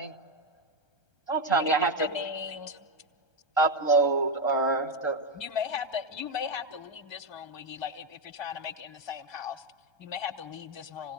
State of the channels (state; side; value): late; right; 1.3 ms